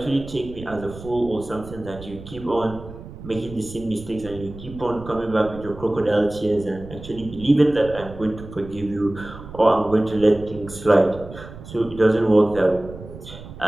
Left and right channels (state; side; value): noise; right; rumble, 15 dB below the sound